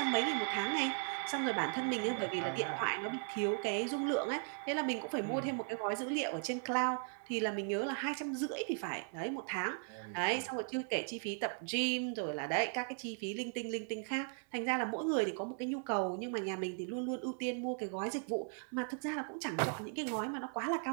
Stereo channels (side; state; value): left; silent; 53 dB below the other